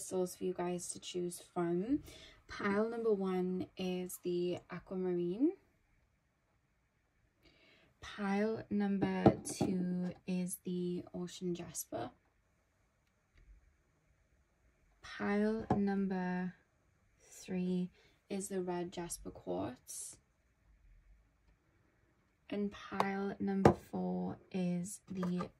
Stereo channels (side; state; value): both; identical; correlation 1.00